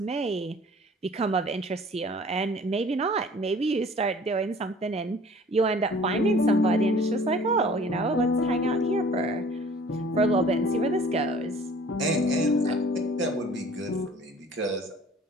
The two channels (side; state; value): both; normal; correlation 0.50